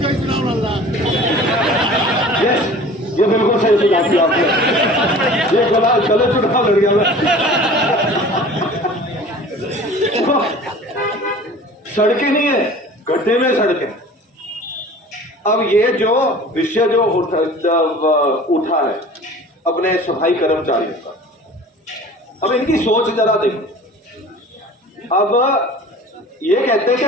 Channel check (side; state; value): both; normal; correlation 0.43